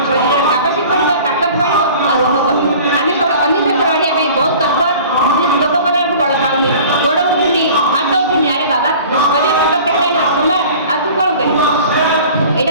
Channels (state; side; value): inverted; both; correlation -0.44